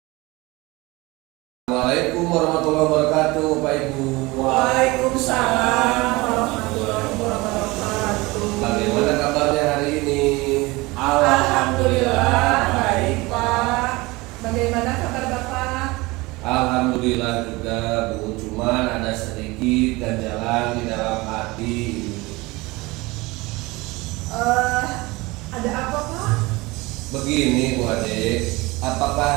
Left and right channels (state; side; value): quieter; left; 22.6 dB